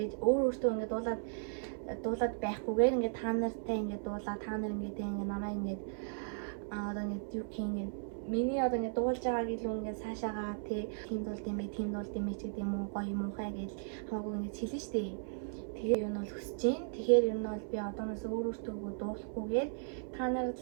өөртөө ингээд дуулаад байхгүйгээр ингээд та нартай ингээд дуулаа та нар ингээд намайг ингээд одоо ингээд юу гэх юм миний одоо ингээд дуулж байгааг илүү ингээд цаашаагаа тийм дуулд юм бэ ч гэдэг юм уу гоё муухай гэж хамаагүй ингээд хэлнэ шүү дээ. Тэгэхээр юу нь бол хүсэж байна. Тэгэхээр юу нь бол би одооноос өөртөө дуулахгүйгээр та нар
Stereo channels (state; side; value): silent; left; 54 dB below the other